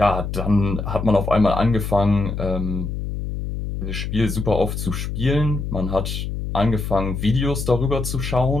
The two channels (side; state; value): left; noise; hum, 4 dB below the sound